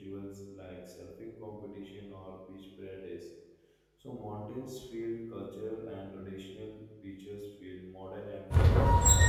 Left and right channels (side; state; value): both; identical; correlation 1.00